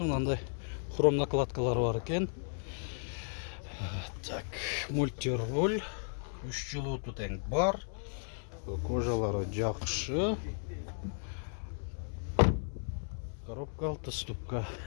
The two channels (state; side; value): silent; right; 55 dB below the other